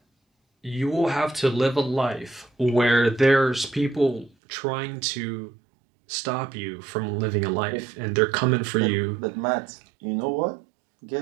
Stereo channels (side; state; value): left; drops out; at 4.3 s